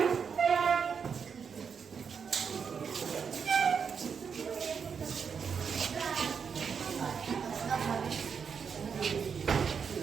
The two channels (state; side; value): quieter; left; 6.4 dB